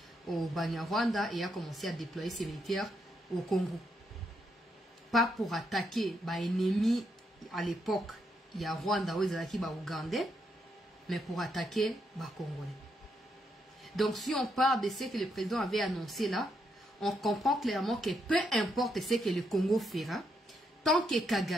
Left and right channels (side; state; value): both; normal; correlation 0.79